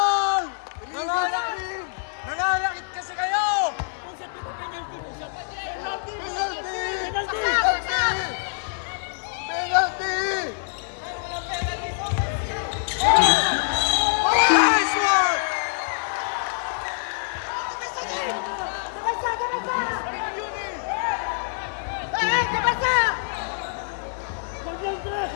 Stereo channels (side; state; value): right; silent; digital silence